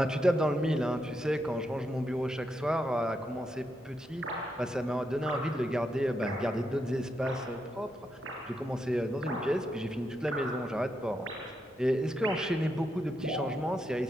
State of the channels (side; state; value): both; normal; correlation 0.82